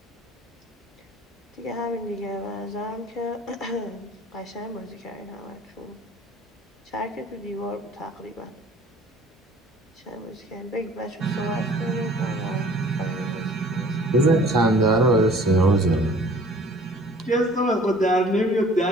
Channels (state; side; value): normal; both; correlation 0.51